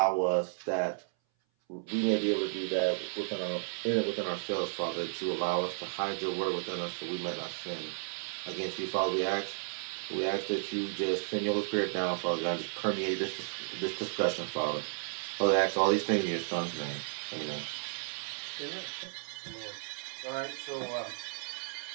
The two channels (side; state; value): left; silent; 56 dB below the other